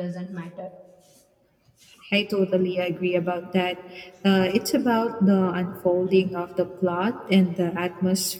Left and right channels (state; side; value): identical; both; correlation 1.00